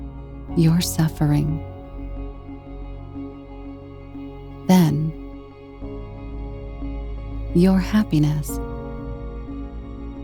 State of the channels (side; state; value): both; identical; correlation 1.00